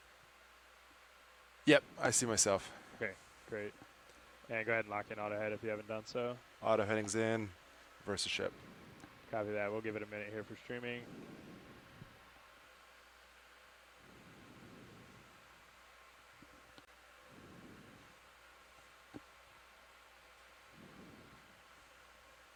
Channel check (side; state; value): both; identical; correlation 1.00